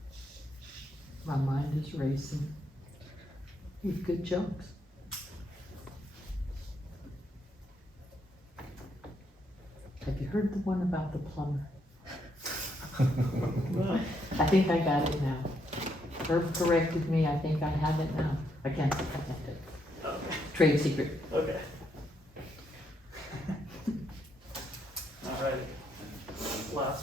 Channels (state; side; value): normal; both; correlation 0.76